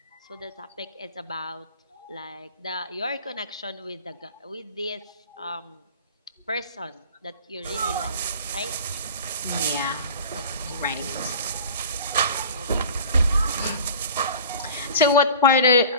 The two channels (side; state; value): both; inverted; correlation -0.40